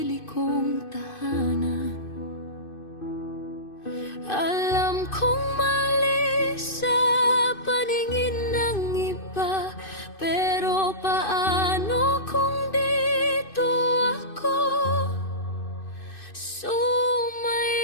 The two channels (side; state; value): right; late; 2.5 ms